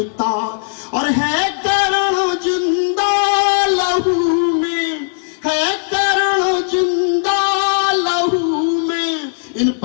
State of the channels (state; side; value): silent; right; digital silence